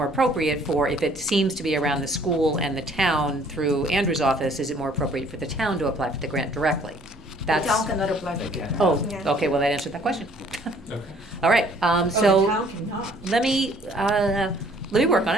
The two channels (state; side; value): normal; both; correlation 0.59